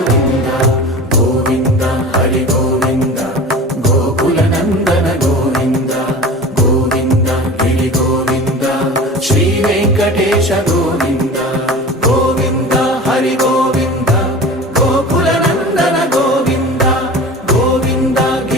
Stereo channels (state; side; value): normal; both; correlation 0.36